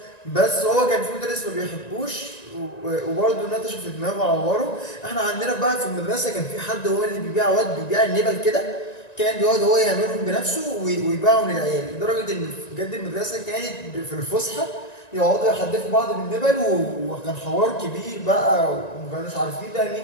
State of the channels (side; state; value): right; late; 1.9 ms